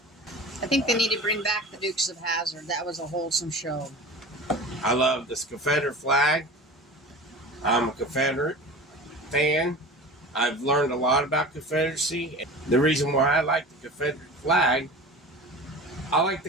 I think they need to bring back the Dukes of Hazzard. That was a wholesome show. I love this Confederate flag. I'm a Confederate fan. I've learned a lot about Confederacy. The reason why I like the Confederate flag, I like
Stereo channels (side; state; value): both; normal; correlation 0.36